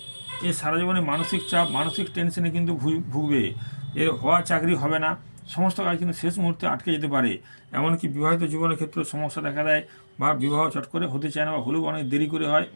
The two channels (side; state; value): both; inverted; correlation -1.00